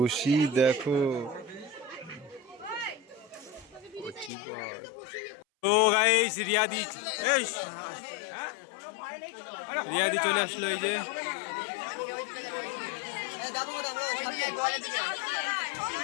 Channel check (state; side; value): drops out; right; at 4.3 s